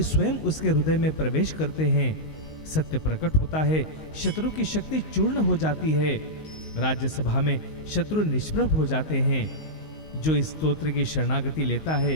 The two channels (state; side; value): late; right; 19 ms